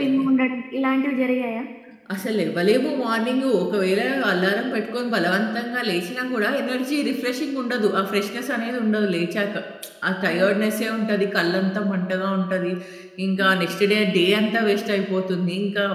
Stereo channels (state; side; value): identical; both; correlation 1.00